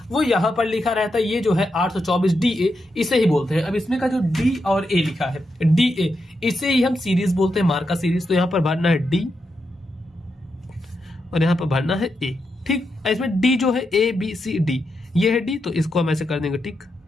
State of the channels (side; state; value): both; normal; correlation 0.85